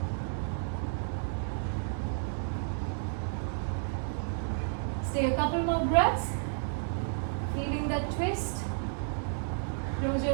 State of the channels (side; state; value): left; silent; digital silence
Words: Stay a couple more breaths, feeling that twist. Close